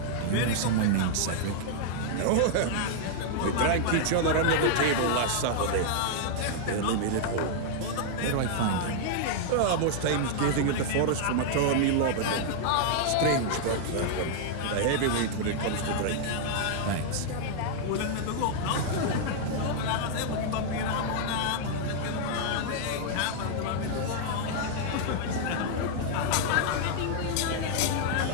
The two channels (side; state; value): both; different; correlation -0.01